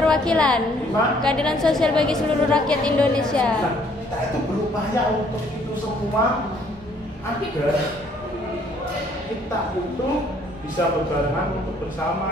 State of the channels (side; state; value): both; normal; correlation 0.63